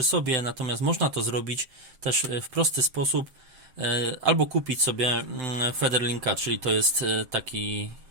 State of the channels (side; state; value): left; late; 7.8 ms